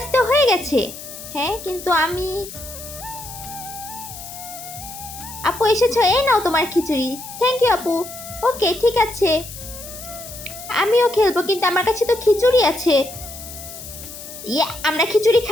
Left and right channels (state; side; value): noise; left; hiss, 13 dB below the sound